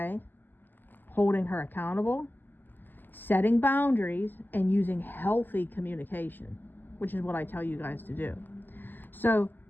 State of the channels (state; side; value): late; right; 0.090 ms